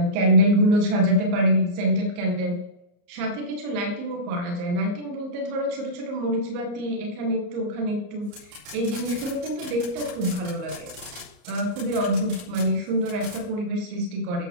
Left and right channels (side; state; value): left; late; 34 ms